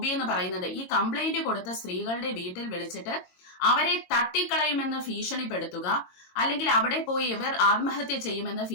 എന്ന് പറയുന്നത് ഈ കംപ്ലൈന്റ് കൊടുത്ത സ്ത്രീകളുടെ വീട്ടിൽ വിളിച്ചിട്ട് അവരെ തട്ടിക്കളയുമെന്ന് ഭീഷണിപ്പെടുത്തുക, അല്ലെങ്കിൽ അവിടെ പോയി ഇവർ ആത്മഹത്യ ചെയ്യുമെന്ന്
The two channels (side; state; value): right; late; 22 ms